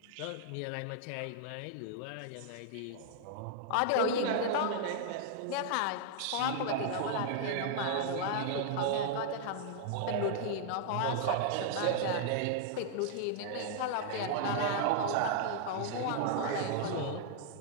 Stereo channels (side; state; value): both; different; correlation -0.01